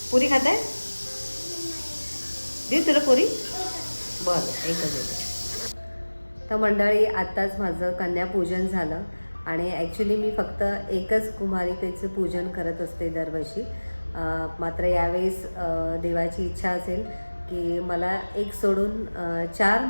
पुरी खात आहे? देऊ तुला पुरी? बरं, एकच. तर मंडळी, आत्ताच माझं कन्यापूजन झालं आणि ॲक्च्युली मी फक्त एकच कुमारिकेचं पूजन करत असते दरवर्षी. मात्र यावेळेस देवाची इच्छा असेल की मला एक सोडून 4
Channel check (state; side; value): inverted; both; correlation -1.00